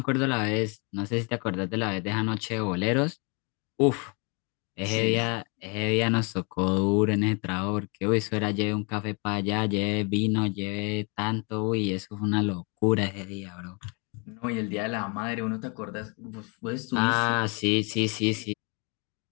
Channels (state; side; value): quieter; right; 33.3 dB